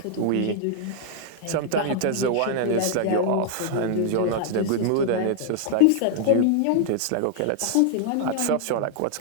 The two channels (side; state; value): both; different; correlation -0.01